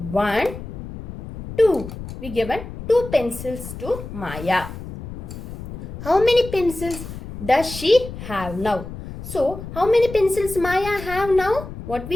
1, 2. We given 2 pencils to Maya. How many pencils does she have now? So, how many pencils Maya have now? What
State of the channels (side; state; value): left; noise; rumble, 11 dB below the sound